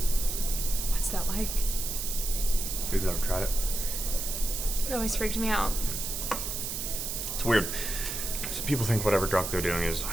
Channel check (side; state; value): right; noise; hiss, 3 dB below the sound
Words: What's that like? You've never tried it? It always freaked me out. It's weird. So people think whatever drug they're doing is